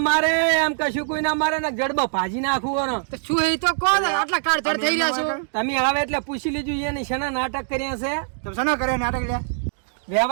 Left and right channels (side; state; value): left; silent; digital silence